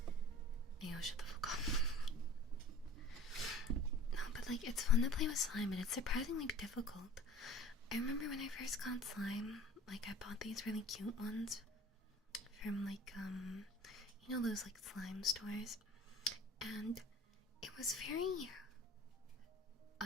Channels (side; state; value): both; normal; correlation 0.44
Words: Ayo, shut the fuck up. No, but like, it's fun to play with slime, but it's surprisingly difficult. I remember when I first got slime, like, I bought these really cute ones from, like, you know those, like, slime stores? And it was very,